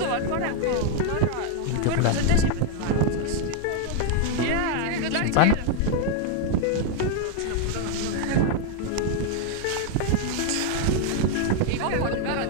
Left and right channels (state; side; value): different; both; correlation 0.00